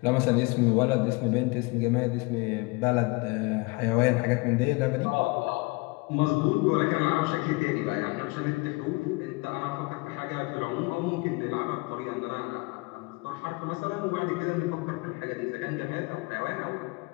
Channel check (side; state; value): right; quieter; 25.7 dB